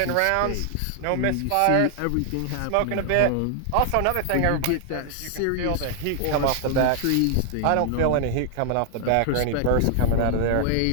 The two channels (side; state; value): both; different; correlation 0.00